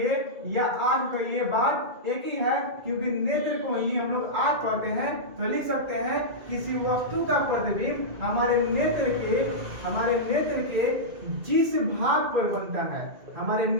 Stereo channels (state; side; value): late; left; 2.3 ms